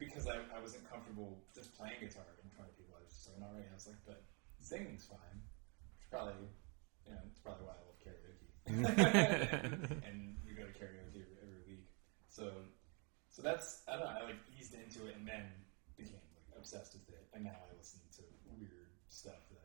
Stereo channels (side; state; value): left; quieter; 34.2 dB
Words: I wasn't comfortable just playing guitar in front of people. I was just like, alright. I was like, but singing's fine. It's probably, it's probably why I love karaoke. And we go to karaoke every week. So that's, I don't know, I like eased into it and then became like obsessed with it. And now I listen to weird stuff